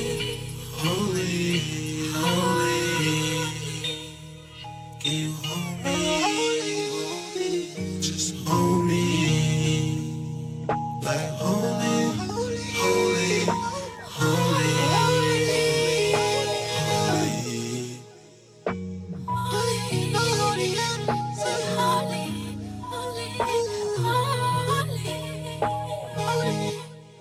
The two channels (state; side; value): identical; both; correlation 1.00